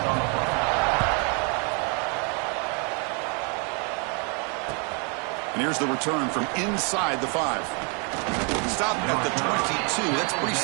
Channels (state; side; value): quieter; left; 35.8 dB